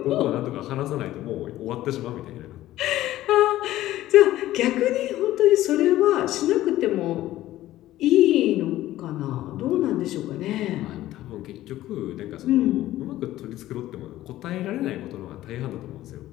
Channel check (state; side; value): quieter; right; 14.8 dB